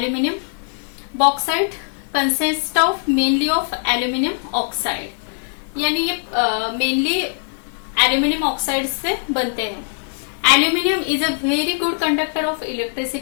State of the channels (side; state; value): right; silent; 60 dB below the other